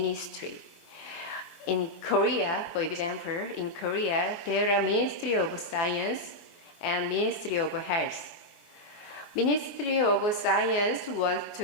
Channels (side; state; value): right; late; 24 ms